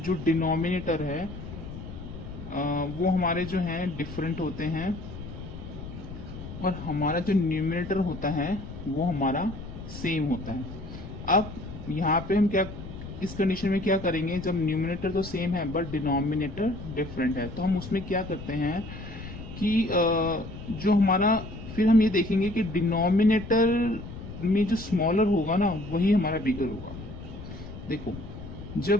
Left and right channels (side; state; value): left; noise; rumble, 11 dB below the sound